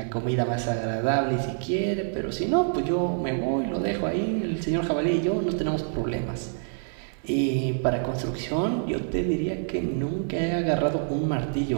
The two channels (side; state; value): left; silent; digital silence